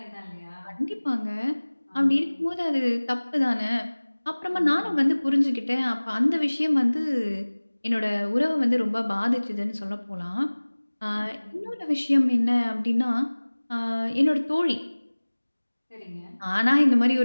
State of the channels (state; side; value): inverted; both; correlation -1.00